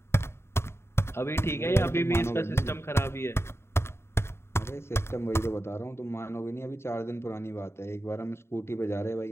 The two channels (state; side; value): late; right; 0.12 ms